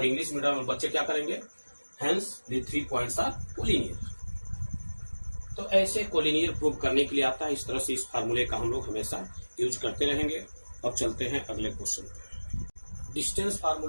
इंग्लिश मीडियम में बच्चे क्या करेंगे, hence the 3 points are collinear. तो ऐसे कोलिनियर प्रूव करने के लिए आता है। इस तरह से इस फार्मूले का हम लोग हमेशा यूज करते रहेंगे। अब चलते हैं अगले क्वेश्चन पर। डिस्टेंस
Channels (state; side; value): inverted; both; correlation -1.00